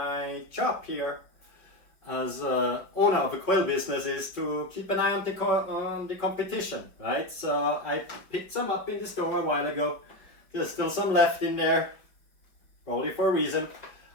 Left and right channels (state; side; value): late; right; 5.2 ms